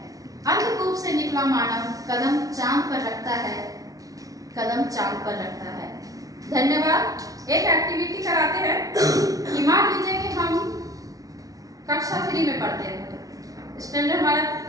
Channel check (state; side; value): late; left; 0.18 ms